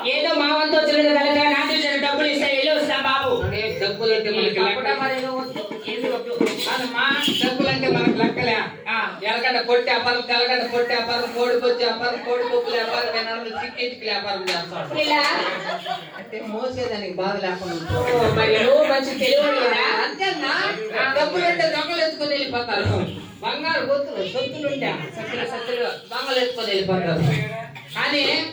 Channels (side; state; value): both; identical; correlation 1.00